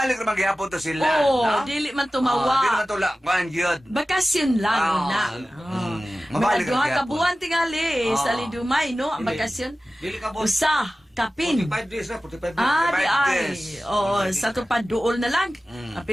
na maghihapon to sila. Oo, no? dili man Di tumawa. naman tula, kuhan yun. Bakasyon lang na. Mabalik Mga duha ang ka gihapon. buwan tingali sa Oo. Lidumay, no? Ang bakasyon. Dili ka, boss. Usa, kapin. 45 days na, 45 days. Ah, di 45 ay. days. Oo, sa tupad duol na lang.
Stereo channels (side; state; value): both; normal; correlation 0.95